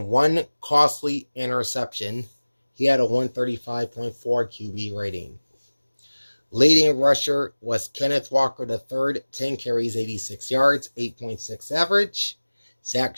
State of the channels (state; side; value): inverted; both; correlation -1.00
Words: 1 costly interception. He had a 135.4 QB rating. Leading rusher was Kenneth Walker III, 10 carries, 86 yards, 8.6 average. Zach